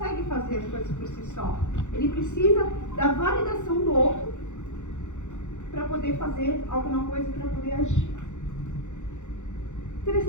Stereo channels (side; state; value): right; late; 0.84 ms